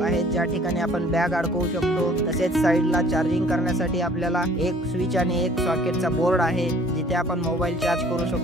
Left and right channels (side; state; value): both; normal; correlation 0.54